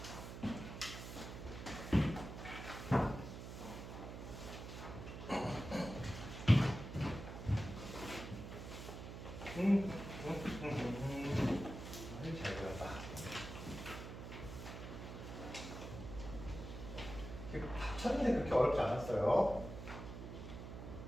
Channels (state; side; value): noise; right; hum, 9 dB below the sound